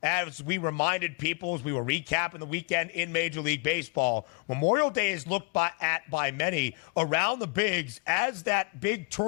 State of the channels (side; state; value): right; quieter; 31.0 dB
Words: as we reminded people as we were recapping the weekend in Major League Baseball, Memorial Day is looked at by many around the bigs as that big